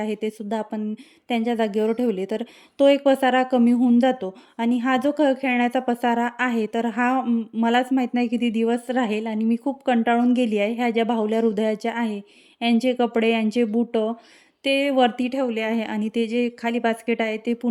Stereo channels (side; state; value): both; identical; correlation 1.00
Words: ते सुद्धा आपण त्यांच्या जागेवर ठेवले, तर तो एक पसारा कमी होऊन जातो. आणि हा जो खेळण्याचा पसारा आहे, तर हा मलाच माहीत नाही किती दिवस राहील आणि मी खूप कंटाळून गेली आहे. ह्या ज्या बाहुल्या हृदयाच्या आहे, यांचे कपडे, यांचे बुटं ते वरती ठेवले आहे आणि ते जे खाली बास्केट आहे ते